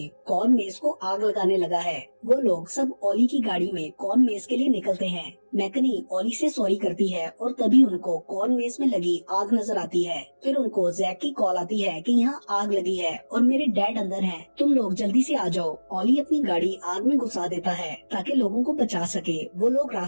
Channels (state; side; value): inverted; both; correlation -1.00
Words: कॉर्न मेज को आग लगाने लगा है। वो लोग सब ओली की गाड़ी में कॉर्न मेज के लिए निकलते हैं। मैकनी ओली से सॉरी करती है और तभी उनको कॉर्न मेज में लगी आग नजर आती है। फिर उनको जैक की कॉल आती है कि यहाँ आग लगी है और मेरे डैड अंदर हैं, तुम लोग जल्दी से आ जाओ। ओली अपनी गाड़ी आग में घुसा देता है ताकि लोगों को बचा सके। वो लोग